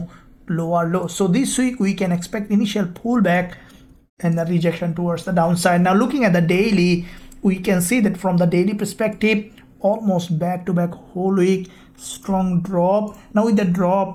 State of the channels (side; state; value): both; identical; correlation 1.00